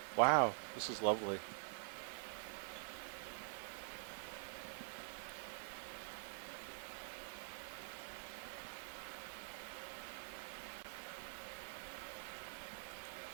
Wow, this is lovely.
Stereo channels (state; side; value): silent; left; digital silence